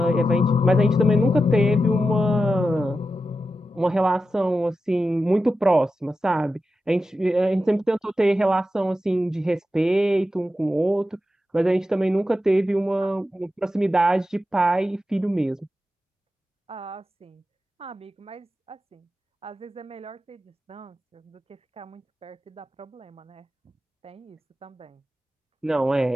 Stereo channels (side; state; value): both; normal; correlation 0.91